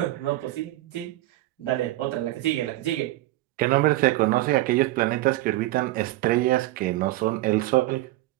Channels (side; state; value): left; quieter; 17.4 dB